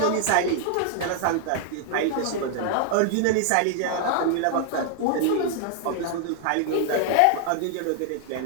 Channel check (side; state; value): both; different; correlation 0.00